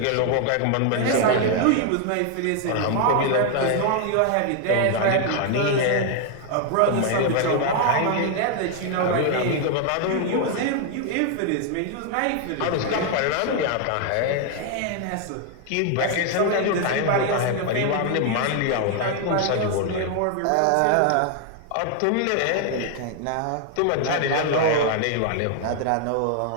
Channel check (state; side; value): different; both; correlation 0.00